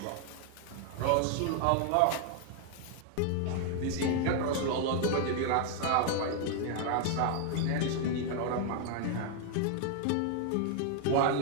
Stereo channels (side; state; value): both; different; correlation 0.00